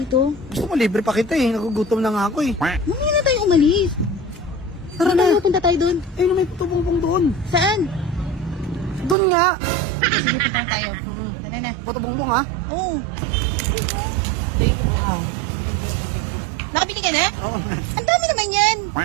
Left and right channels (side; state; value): left; drops out; at 9.2 s